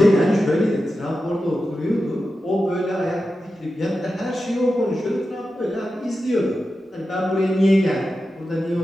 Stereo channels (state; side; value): normal; both; correlation 0.91